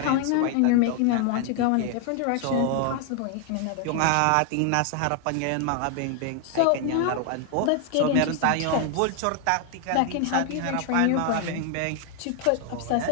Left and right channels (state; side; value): different; both; correlation 0.00